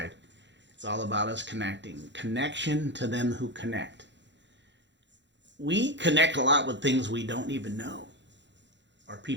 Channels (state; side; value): late; left; 0.52 ms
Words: It's all about us connecting. Connection to them who connect. We connect a lot with things we don't even know or